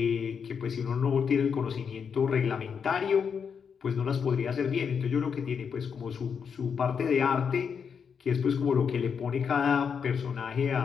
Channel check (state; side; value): quieter; right; 6.6 dB